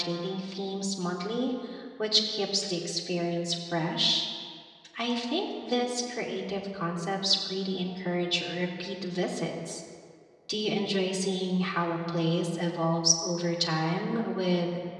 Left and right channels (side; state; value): both; identical; correlation 1.00